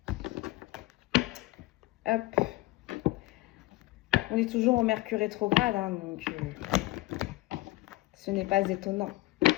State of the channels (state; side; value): quieter; right; 19.4 dB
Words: Hop. On est toujours en Mercure rétrograde, hein, donc ce n'est pas étonnant. Donc,